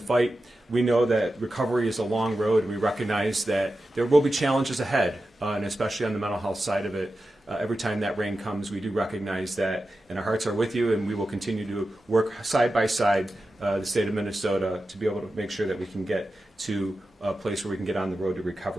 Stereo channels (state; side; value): normal; both; correlation 0.92